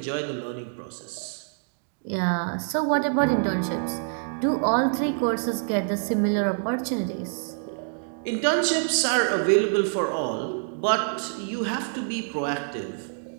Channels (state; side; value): silent; left; digital silence